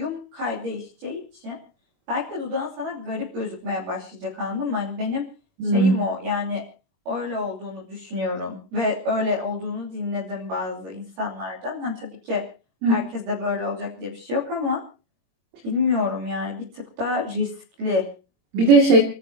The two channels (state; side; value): late; left; 21 ms